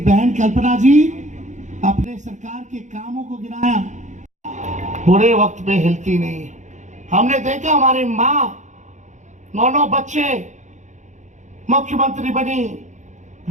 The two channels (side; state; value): left; late; 0.35 ms